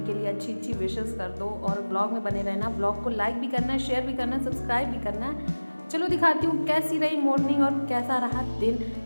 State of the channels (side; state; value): both; inverted; correlation -1.00